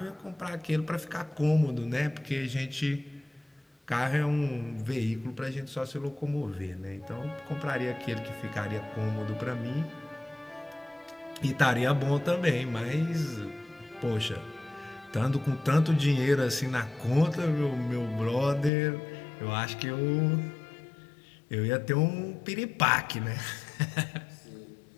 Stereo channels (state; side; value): drops out; right; at 18.7 s